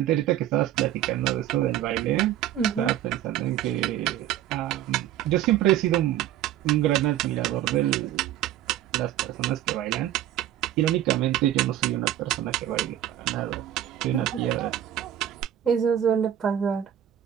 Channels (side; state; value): left; quieter; 11.9 dB